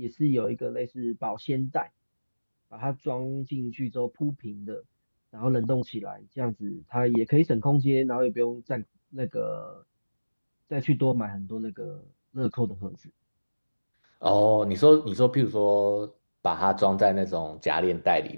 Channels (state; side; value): inverted; both; correlation -1.00